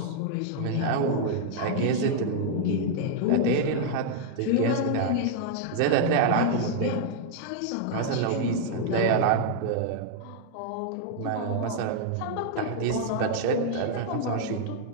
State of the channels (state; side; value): different; both; correlation 0.00